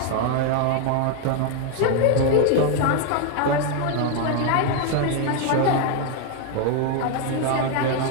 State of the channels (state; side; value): different; both; correlation 0.01